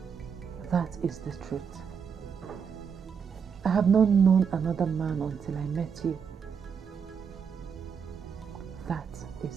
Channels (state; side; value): quieter; left; 6.7 dB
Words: That is the truth. I have not known another man until I met you. That